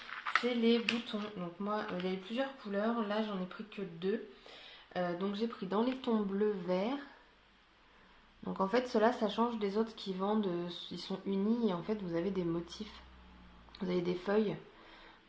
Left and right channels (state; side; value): identical; both; correlation 1.00